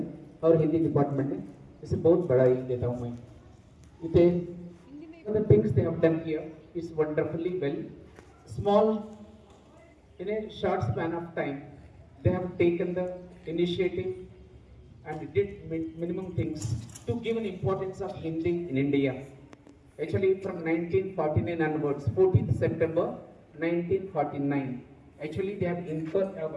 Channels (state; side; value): identical; both; correlation 1.00